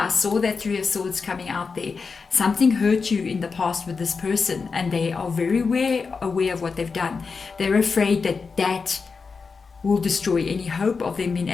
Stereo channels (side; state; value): right; quieter; 4.9 dB